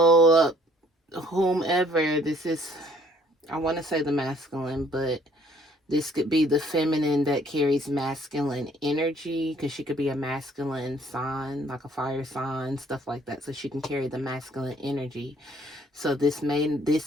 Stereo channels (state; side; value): normal; both; correlation 0.60